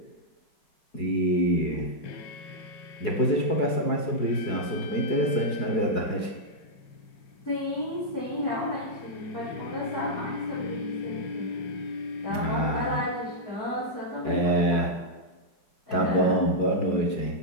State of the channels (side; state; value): right; late; 4.8 ms